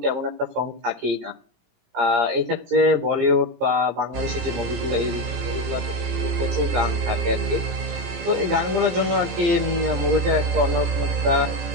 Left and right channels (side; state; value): left; late; 17 ms